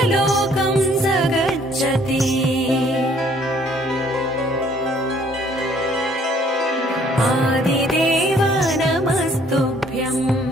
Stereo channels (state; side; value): normal; both; correlation 0.61